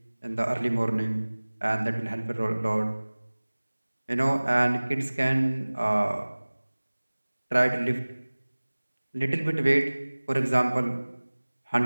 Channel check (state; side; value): inverted; both; correlation -1.00